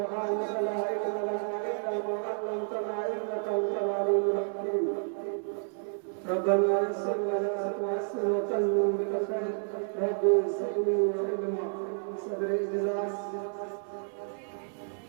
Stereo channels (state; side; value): silent; left; 57 dB below the other